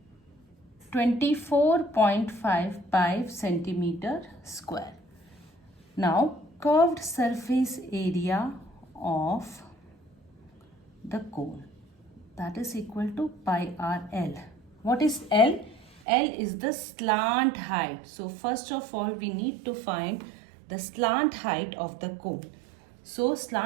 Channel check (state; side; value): drops out; left; at 16.0 s